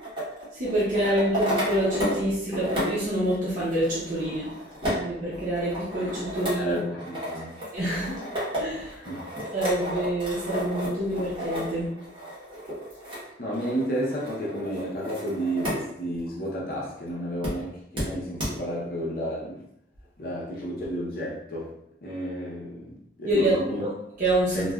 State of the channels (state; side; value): normal; both; correlation 0.48